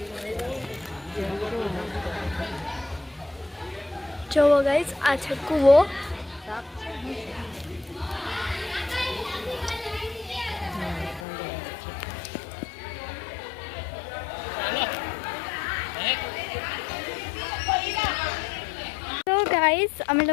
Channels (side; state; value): right; drops out; at 11.2 s